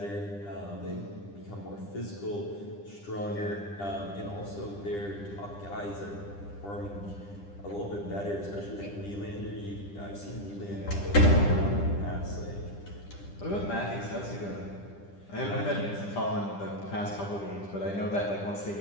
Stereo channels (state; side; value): late; right; 10 ms